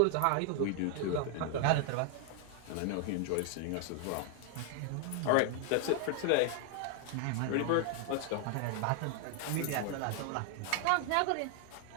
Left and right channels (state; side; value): different; both; correlation 0.00